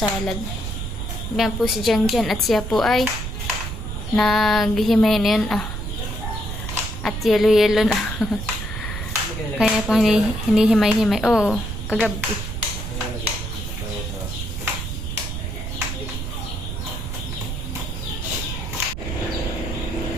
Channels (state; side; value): noise; right; rumble, 5 dB below the sound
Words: Yan po si Janjan, at siya po ay naghihimay na yun. At yelo na. Kaya po hinihimay-himay. Oo, kagabi.